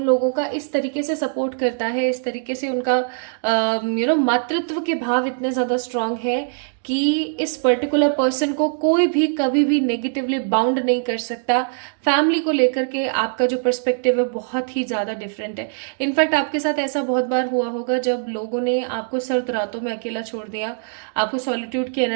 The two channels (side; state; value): left; silent; digital silence